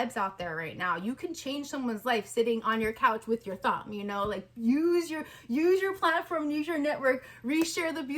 out there right now. You can change someone's life sitting on your couch with your thumb, you know, like use your platform, use your network, reshare the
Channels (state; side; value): identical; both; correlation 1.00